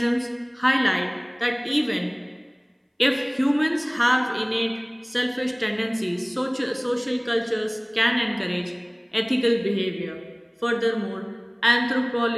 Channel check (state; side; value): identical; both; correlation 1.00